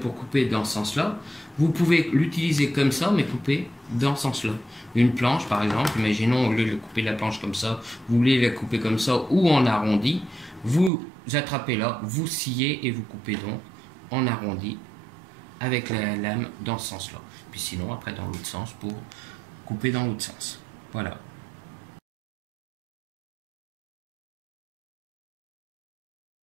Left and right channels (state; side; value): drops out; left; at 10.9 s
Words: couper dans ce sens-là, vous pouvez l'utiliser comme ça, mais couper dans ce sens-là. Une planche, par exemple, imaginons, au lieu de couper la planche comme ça, vous voulez la couper comme ça ou en arrondi, vous attrapez là, vous sciez et vous coupez donc en arrondi avec la lame dans ce sens-là. Puis sinon, après, dans l'autre sens pour couper dans l'autre sens. Voilà.